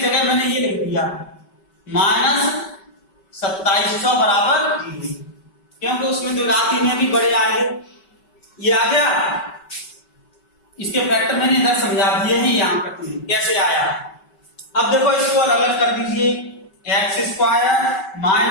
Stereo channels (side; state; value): right; late; 5.2 ms